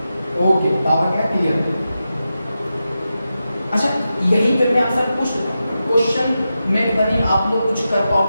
ओके, पावर क्या है? क्लियर। अच्छा, यही पे मैं आपसे क्वेश्चन में बनी, आप लोग कुछ कर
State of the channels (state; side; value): inverted; both; correlation -0.90